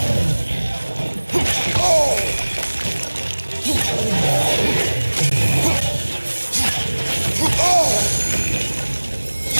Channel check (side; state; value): both; inverted; correlation -1.00